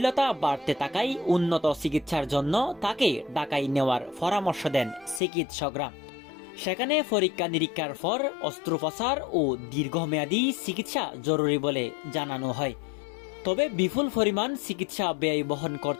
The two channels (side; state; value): right; drops out; at 5.2 s